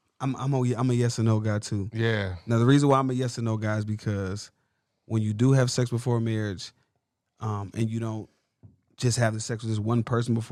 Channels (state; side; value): identical; both; correlation 1.00